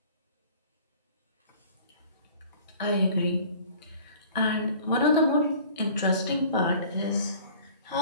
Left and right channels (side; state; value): both; inverted; correlation -0.48